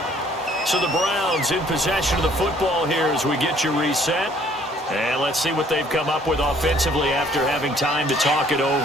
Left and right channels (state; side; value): normal; both; correlation 0.60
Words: So the Browns in possession of the football here as we get you reset. And let's see what they've come up with offensively after having time to talk it